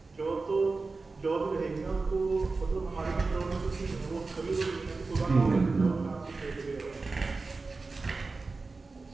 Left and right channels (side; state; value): left; quieter; 3.9 dB